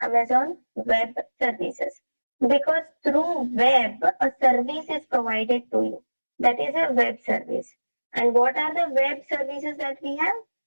Amazon Web Services. Because through web, a service is provided to you. That is a web service. And what are the web services that we have?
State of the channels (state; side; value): inverted; both; correlation -1.00